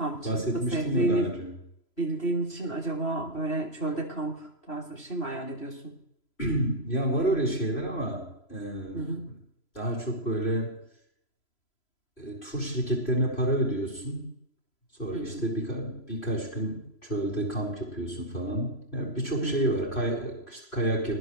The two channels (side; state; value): right; late; 3.0 ms